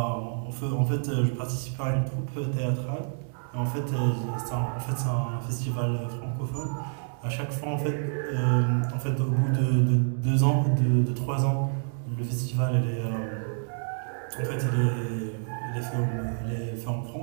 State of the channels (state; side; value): silent; left; 59 dB below the other